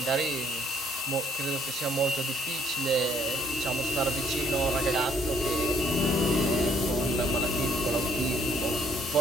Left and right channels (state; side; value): normal; both; correlation 0.65